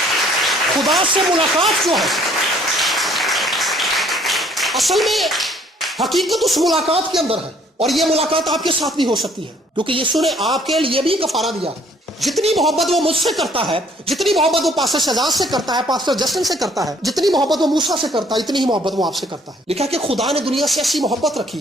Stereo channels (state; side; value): normal; both; correlation 0.60